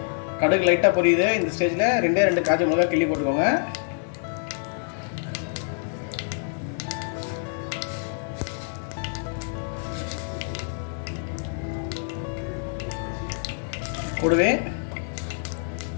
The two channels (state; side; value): silent; right; digital silence